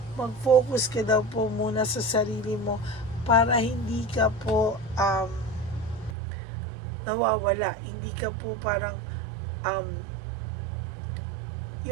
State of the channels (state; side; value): drops out; left; at 6.2 s